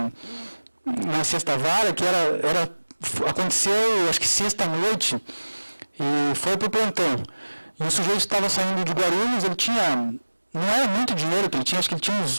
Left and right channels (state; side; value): inverted; both; correlation -1.00